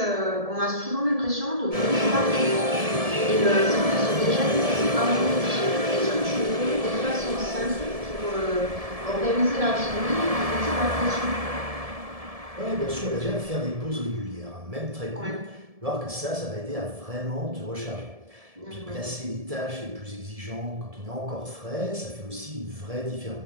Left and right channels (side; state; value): left; late; 1.7 ms